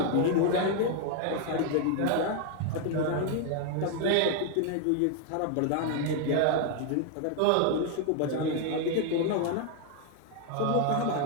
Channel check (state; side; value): different; both; correlation 0.00